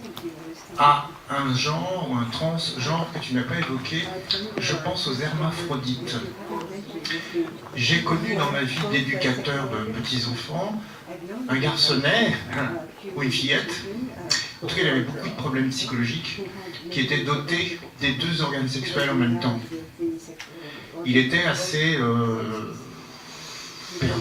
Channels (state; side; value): identical; both; correlation 1.00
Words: à un genre ou un transgenre que tu n'as pas évoqué. Je pense aux hermaphrodites. J'ai connu dans ma vie d'éducateur de petits-enfants un garçonnet ou une fillette. En tout cas, il avait beaucoup de problèmes psychologiques qui étaient dotés des deux organes sexuels en même temps. Il était assez